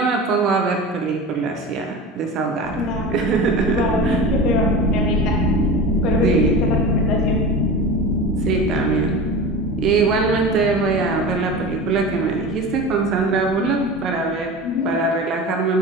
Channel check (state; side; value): normal; both; correlation 0.31